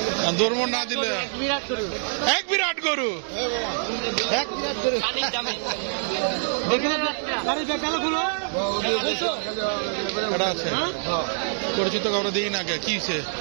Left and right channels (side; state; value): left; silent; digital silence